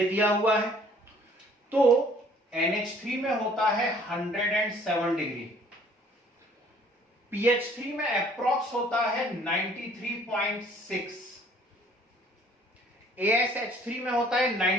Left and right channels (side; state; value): both; normal; correlation 0.57